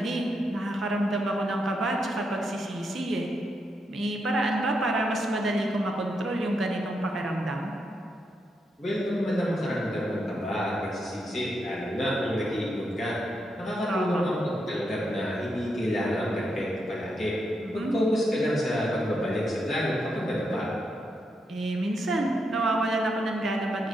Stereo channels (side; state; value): both; normal; correlation 0.82